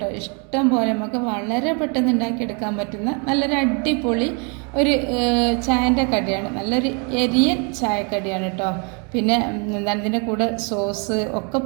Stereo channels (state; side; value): quieter; left; 35.1 dB